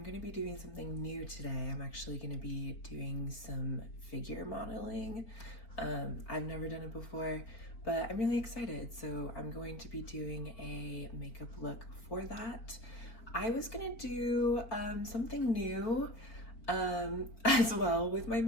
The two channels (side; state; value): right; late; 4.4 ms